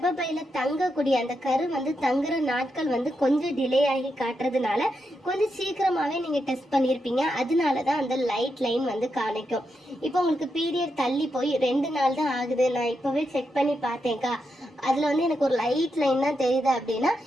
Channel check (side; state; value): both; normal; correlation 0.84